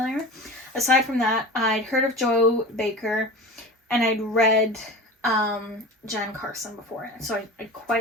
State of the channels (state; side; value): normal; both; correlation 0.33